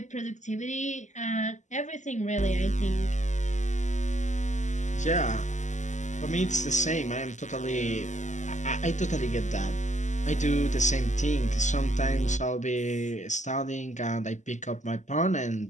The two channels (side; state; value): right; late; 0.34 ms